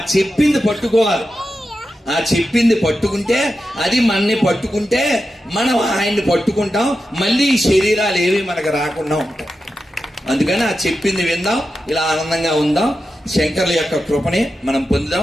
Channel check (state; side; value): normal; both; correlation 0.90